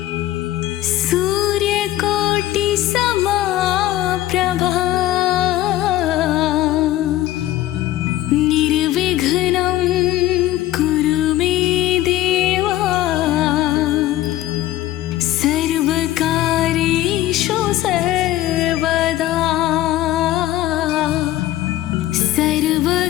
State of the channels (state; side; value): quieter; right; 14.7 dB